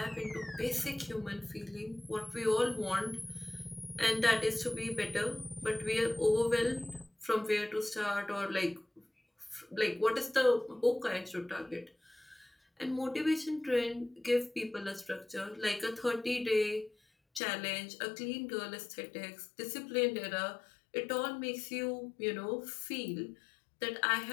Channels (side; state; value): right; drops out; at 17.4 s